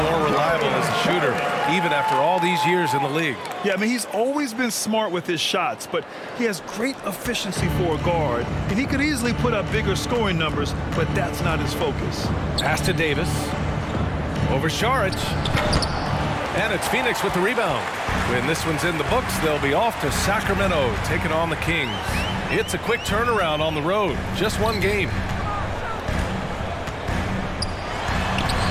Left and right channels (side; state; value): both; identical; correlation 1.00